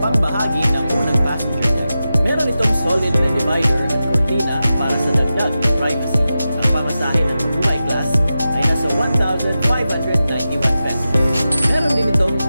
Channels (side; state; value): both; inverted; correlation -0.92